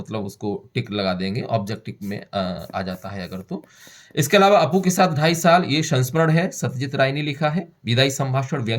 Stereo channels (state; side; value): identical; both; correlation 1.00